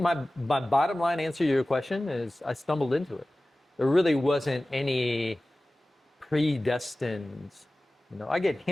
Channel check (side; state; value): both; normal; correlation 0.97